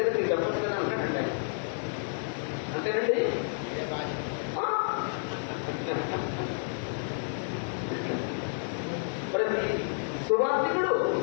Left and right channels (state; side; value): silent; right; digital silence